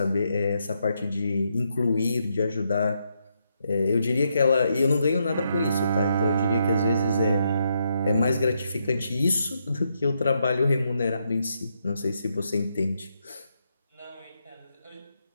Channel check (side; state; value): both; inverted; correlation -0.79